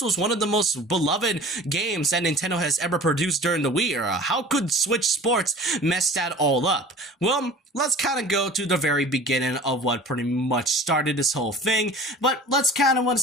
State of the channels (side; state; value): both; normal; correlation 0.42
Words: was one of the most beloved games that Nintendo has ever produced during the Wii era. How could Switch Sports mess that all up? Well, let's kind of go to the very beginning of what pretty much started this whole thing, but let's kind of want